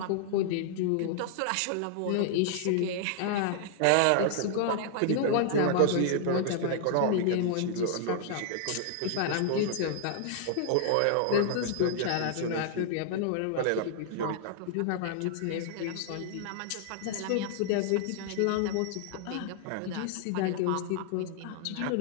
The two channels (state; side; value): different; both; correlation -0.01